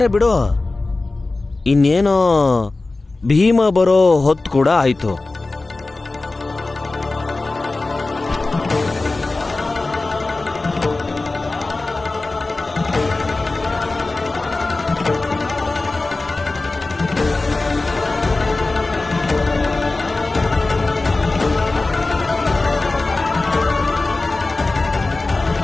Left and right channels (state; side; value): quieter; right; 3.3 dB